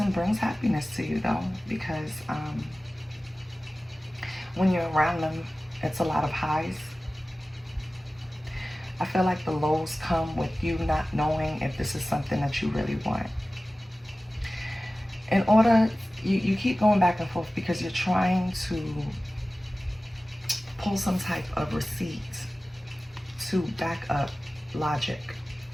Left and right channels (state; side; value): normal; both; correlation 0.96